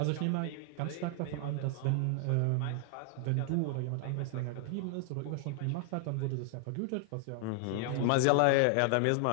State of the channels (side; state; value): both; different; correlation 0.00